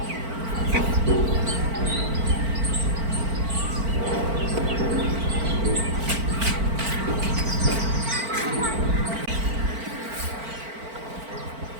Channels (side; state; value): left; late; 4.5 ms